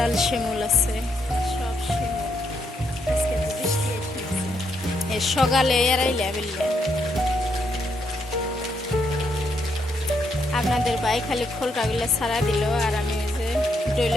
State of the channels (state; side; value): normal; both; correlation 0.76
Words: শিমুল আছে, সব শিমুল। আজকে তো বৃষ্টি এসে গেছে, সকালে এরাইলে বেললে। আপনাদের ভাই খালি খোলটাগুলো ছাড়া দিল, আর আমি ওই যে